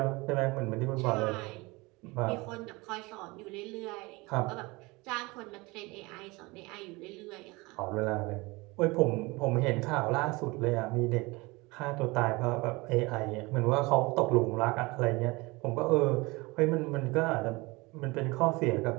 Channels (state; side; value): quieter; left; 24.0 dB